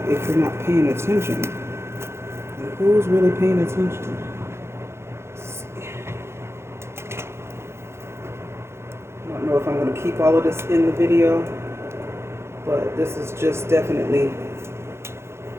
if you're not paying attention. Who's really paying attention? I don't know if I'm going to keep all of this in the video, but this is just definitely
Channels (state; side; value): late; left; 0.13 ms